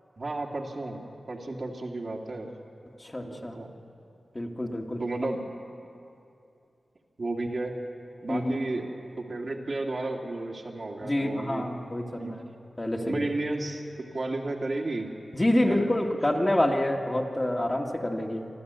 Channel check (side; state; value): both; normal; correlation 0.96